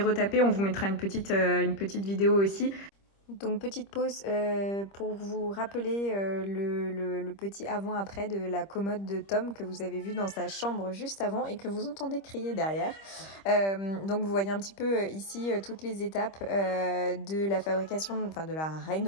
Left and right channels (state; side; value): late; right; 25 ms